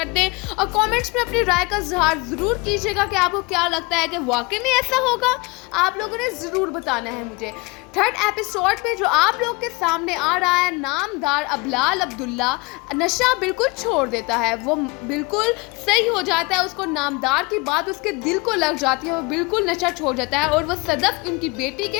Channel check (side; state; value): right; quieter; 26.1 dB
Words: दें और कमेंट्स में अपनी राय का इजहार जरूर कीजिएगा कि आपको क्या लगता है कि वाकई में ऐसा होगा। आप लोगों ने ज़रूर बताना है मुझे। 3rd एपिसोड में जो आप लोग के सामने आ रहा है, नामदार बिलाल अब्दुल्ला नशा बिल्कुल छोड़ देता है, वो बिल्कुल सही हो जाता है, उसको नामदार की बात उसके दिल को लग जाती है, वो बिल्कुल नशा छोड़ जाता है और वो सदफ उनकी बेटी के